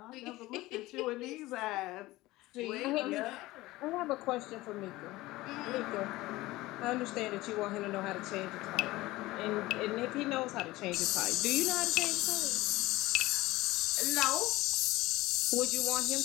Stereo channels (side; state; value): right; quieter; 18.8 dB